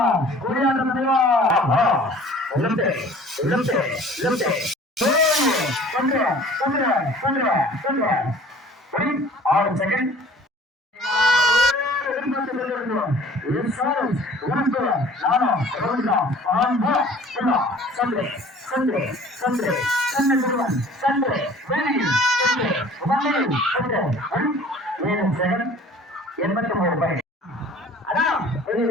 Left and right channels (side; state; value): both; normal; correlation 0.49